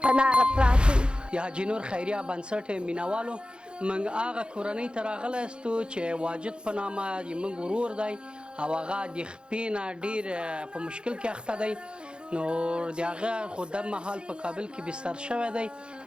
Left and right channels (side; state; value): left; late; 0.052 ms